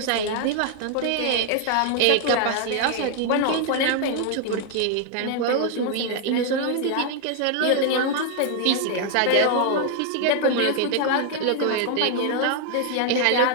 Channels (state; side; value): different; both; correlation 0.00